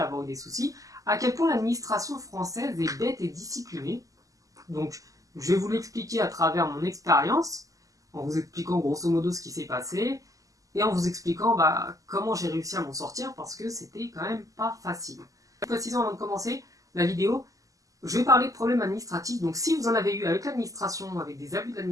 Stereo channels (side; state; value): left; late; 0.17 ms